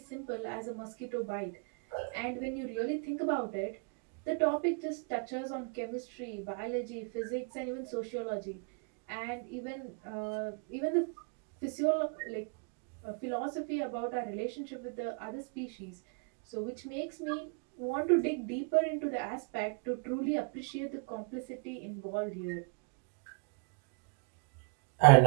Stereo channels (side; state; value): left; quieter; 33.4 dB